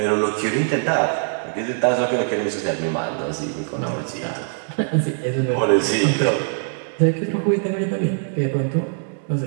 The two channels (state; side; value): silent; left; digital silence